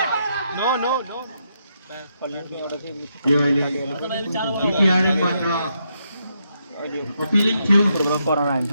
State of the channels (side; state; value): both; inverted; correlation -0.79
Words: अपीलिङ थियो कोरोना